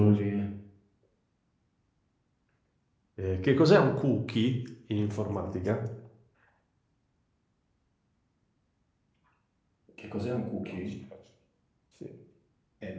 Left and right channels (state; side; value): identical; both; correlation 1.00